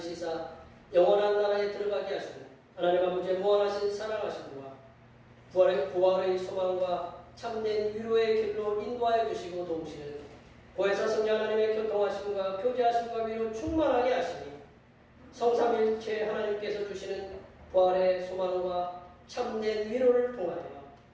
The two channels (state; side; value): identical; both; correlation 1.00